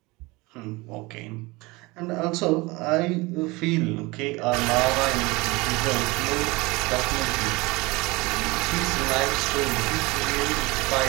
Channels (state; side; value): quieter; left; 23.5 dB